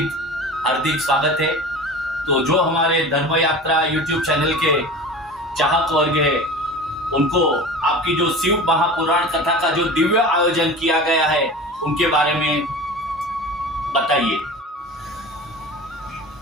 हार्दिक स्वागत है। तो जो हमारे धर्म यात्रा यूट्यूब चैनल के चाहक वर्ग है, उनको आपकी जो शिव महापुराण कथा का जो दिव्य आयोजन किया गया है, उनके बारे में बताइए।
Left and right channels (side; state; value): both; normal; correlation 0.35